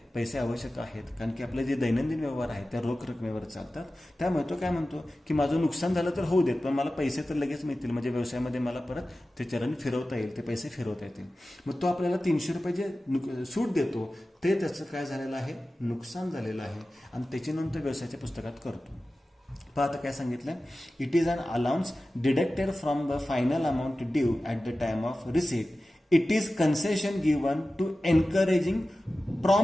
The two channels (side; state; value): both; normal; correlation 0.95